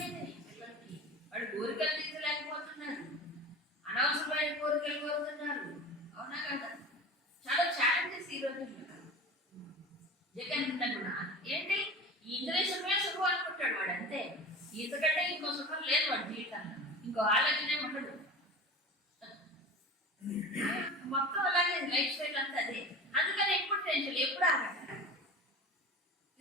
పిల్లలకి. వాడు కోరికలు తీర్చలేకపోతున్నారు, అనవసరమైన కోరికలు కోరుతున్నారు, అవునా కదా? చాలా ఛాలెంజెస్ ఈ రోజుల్లో. జగన్ కూడా ఏంటి ఈ ఇంద్రేశ్వరమే సుఖం అనుకుంటాడు వాడు, అంతే. ఇంతకంటే ఇంకో సుఖం లేదు వాడి జీవితంలో, ఇంకో ఆలోచనే ఉండదు. మొత్తం అలాగే లైఫ్ స్టైల్ అంతా అదే. అందుకని ఎప్పుడు టెన్షన్, ఎప్పుడు ఆగట.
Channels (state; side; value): normal; both; correlation 0.34